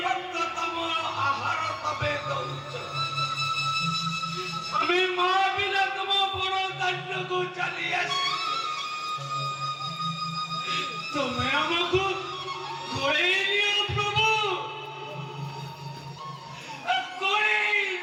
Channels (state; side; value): identical; both; correlation 1.00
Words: ଭକ୍ତ ତମ ଆହାର ତମେ ଦଉଛ। ଆମେ ମା ବିନା ତମ ବଡ଼ ଦାଣ୍ଡକୁ ଚାଲି ଆସିଛୁ। ତୁମେ ଆମକୁ ଗୋଳେଇ ନିଅ ପ୍ରଭୁ, ଗୋଳେଇ